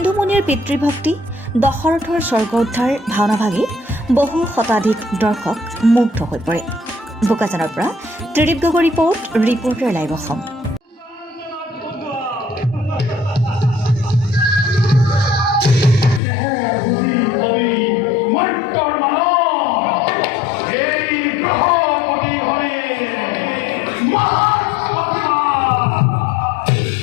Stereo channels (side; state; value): right; drops out; at 16.2 s